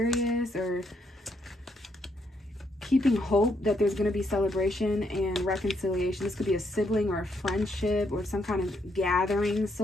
or keeping hope that there's going to be celebration and reconciliation. This could be a sibling or a friendship or some kind of gathering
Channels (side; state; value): both; normal; correlation 0.76